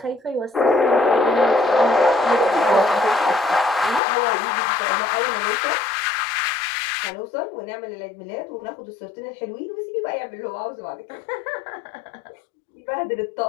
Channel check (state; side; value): drops out; right; at 4.0 s